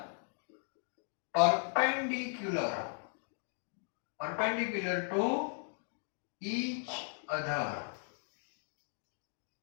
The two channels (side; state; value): right; silent; 53 dB below the other